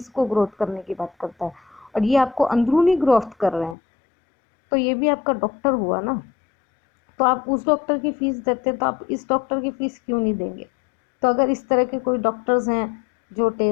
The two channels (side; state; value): right; drops out; at 3.8 s